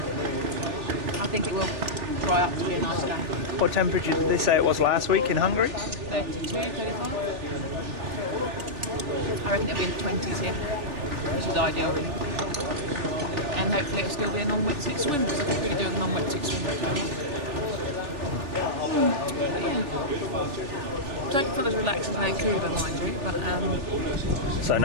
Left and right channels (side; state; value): left; late; 3.4 ms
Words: I think it will dry up to be a nice day. What temperature did they say it was last week in Hungary? 32, 35. I reckon it'll be in the 20s here, which is ideal really. And hopefully it'll still be a non-wetsuit swim, because I could really do a non-wetsuit swim. But yeah. Don't feel as relaxed as Vancouver, mind you, but So